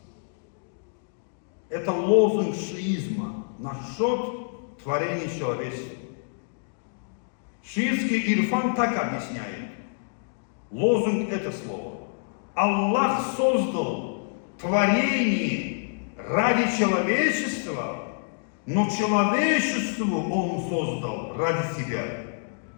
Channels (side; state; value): right; silent; digital silence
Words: Это лозунг шиизма насчет творения человечества. Шиитский ирфан так объясняет. Лозунг это слово. Аллах создал творение ради человечества, но человечеству Он создал ради себя.